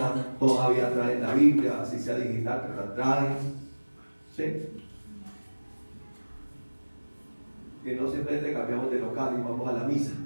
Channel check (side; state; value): both; inverted; correlation -1.00